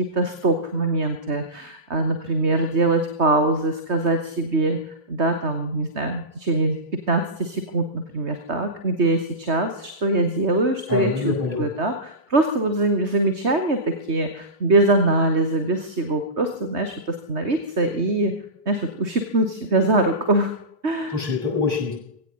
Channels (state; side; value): late; left; 3.2 ms